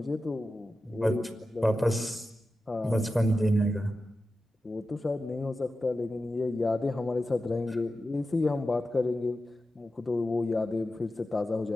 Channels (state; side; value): normal; both; correlation 0.92